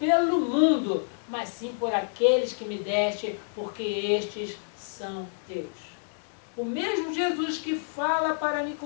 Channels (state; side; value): silent; right; 59 dB below the other